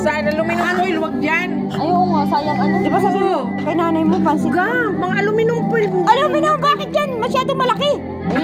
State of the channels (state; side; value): identical; both; correlation 1.00